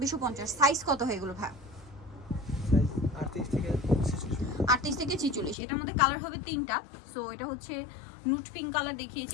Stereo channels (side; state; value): right; drops out; at 5.6 s